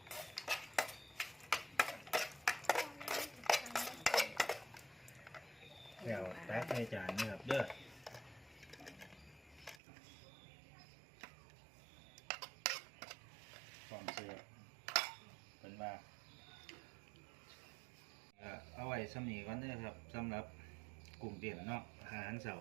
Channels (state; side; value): drops out; left; at 9.8 s